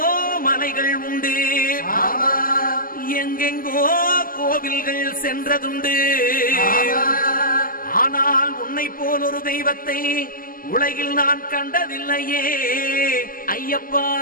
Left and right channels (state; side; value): late; right; 0.41 ms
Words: மலைகள் உண்டு, எங்கெங்கோ கோவில்கள் சென்றதுண்டு. ஆனால் உன்னை போல் ஒரு தெய்வத்தை உலகில் நான் கண்டதில்லையே ஐயப்பா.